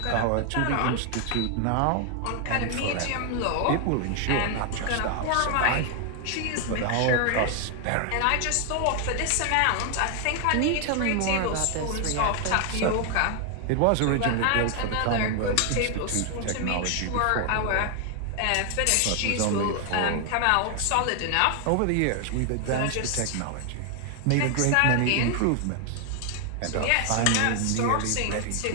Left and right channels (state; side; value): different; both; correlation 0.00